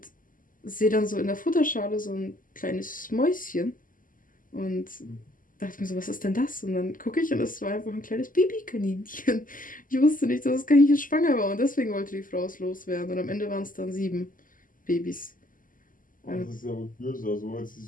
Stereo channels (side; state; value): right; late; 0.39 ms